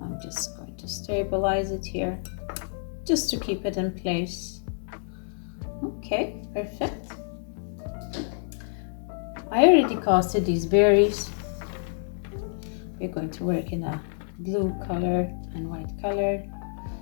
just going to stabilize it here just to keep it in place. Okay, perfect. I already casted these berries. We're going to work in a blue color and white color.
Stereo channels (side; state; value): right; silent; digital silence